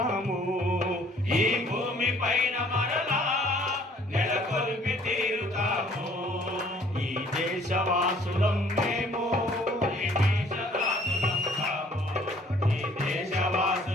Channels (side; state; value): both; normal; correlation 0.58